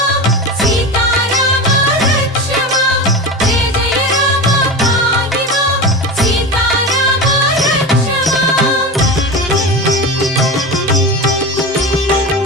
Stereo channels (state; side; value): normal; both; correlation 0.25